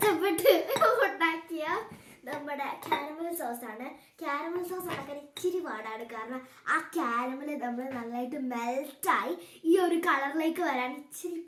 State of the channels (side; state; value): both; identical; correlation 1.00